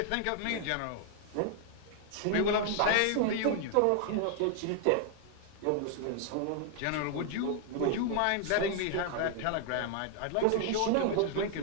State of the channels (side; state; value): both; different; correlation 0.00